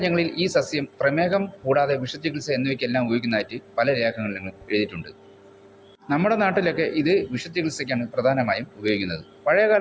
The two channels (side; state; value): both; identical; correlation 1.00